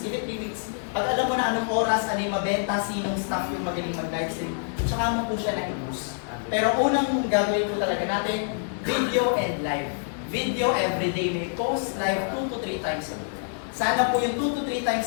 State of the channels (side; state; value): right; silent; digital silence